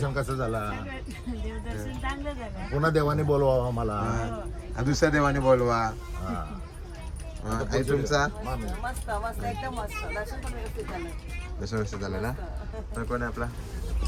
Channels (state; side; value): identical; both; correlation 1.00